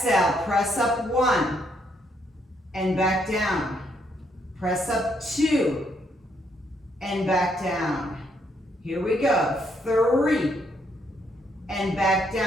Press up 1 and back down. Press up 2 and back down. Here we go. 3 and back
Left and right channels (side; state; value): both; normal; correlation 0.73